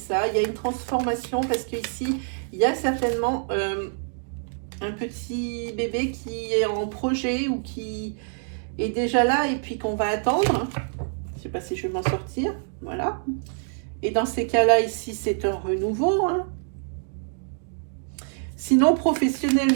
il y a une transformation parce qu'ici, il y a certainement un petit bébé qui est en projet ou qui est déjà là et puis qu'on va attendre. Je ne sais pas si je vais m'en sortir, voilà. Et dans ces cas-là, ici, c'est un renouveau, hein. Sinon,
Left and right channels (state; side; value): silent; left; digital silence